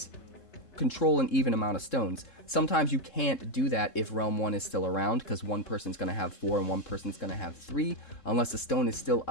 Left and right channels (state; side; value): late; right; 3.7 ms